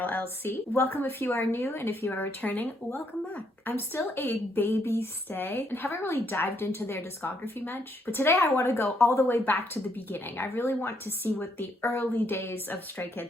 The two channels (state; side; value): normal; both; correlation 0.73